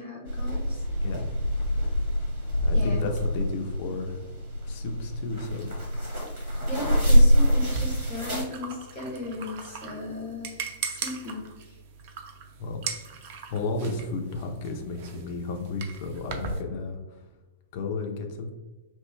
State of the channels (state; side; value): inverted; both; correlation -0.79